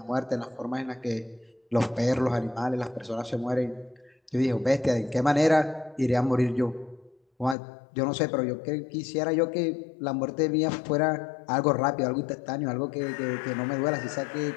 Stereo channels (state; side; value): drops out; right; at 7.6 s